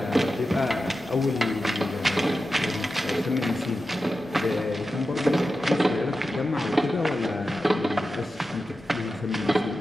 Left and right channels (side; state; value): both; normal; correlation 0.92